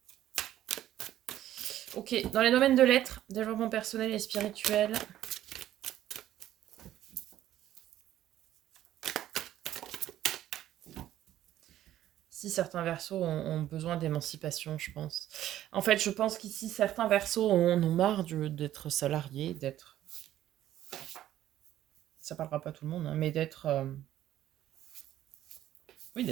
Ok, dans les domaines de l'être, développement personnel et spirituel. Si certains versos ont besoin d'émancipation, je pense. En fait, je pense qu'ici, certains versos en ont marre d'être salariés, d'être... Ça parlera pas à tout le monde, hein, mais d'être... Oui,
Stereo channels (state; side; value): quieter; left; 12.8 dB